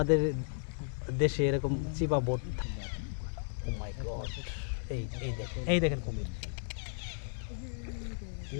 দেশে এরকম চিপা বোট ও মাই গড এই দেখেন কুমির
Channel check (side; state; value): right; silent; digital silence